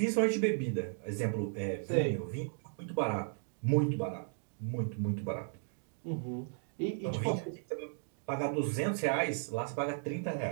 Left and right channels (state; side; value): silent; left; digital silence